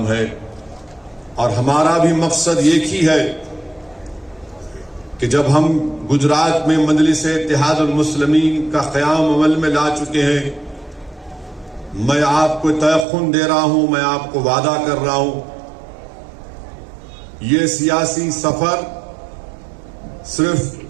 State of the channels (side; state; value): left; drops out; at 13.1 s